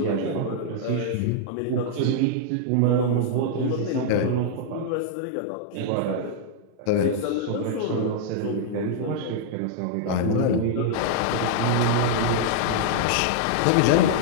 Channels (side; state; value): both; different; correlation -0.01